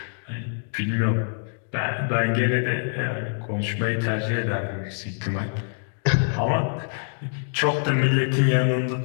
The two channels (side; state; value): right; silent; digital silence